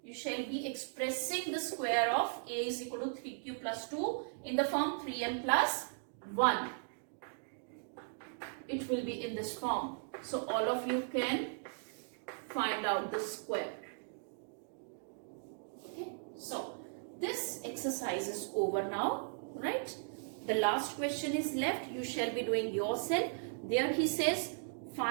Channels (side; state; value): left; silent; digital silence